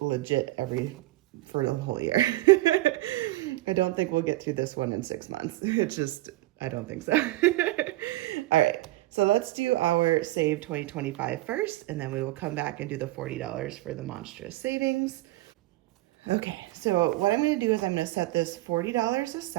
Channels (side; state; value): left; quieter; 18.0 dB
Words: legit for the whole year. I don't think we'll get through this one in 6 months. It's just, I don't think so. All right, so let's do our Save 2025 first, and then we will come back and do the $40 for the Monstrous savings. Okay, so what I'm going to do is I'm going to set this $40